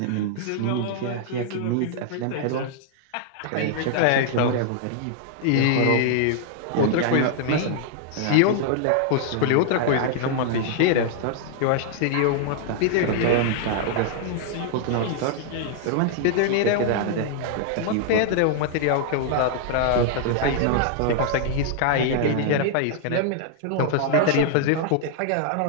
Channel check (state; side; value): different; both; correlation -0.01